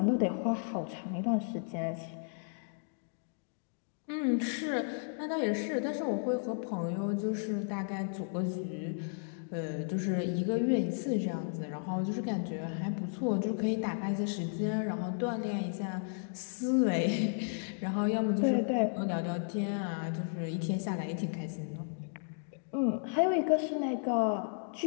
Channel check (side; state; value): right; silent; digital silence